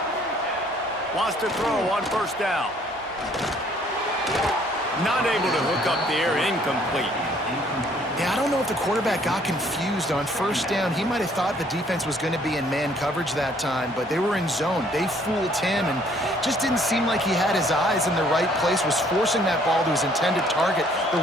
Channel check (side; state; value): both; normal; correlation 0.61